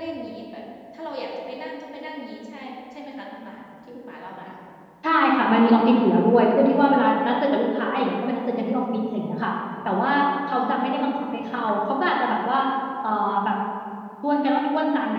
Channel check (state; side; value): identical; both; correlation 1.00